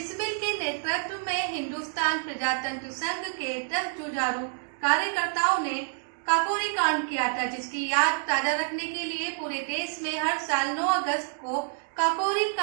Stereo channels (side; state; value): left; silent; 59 dB below the other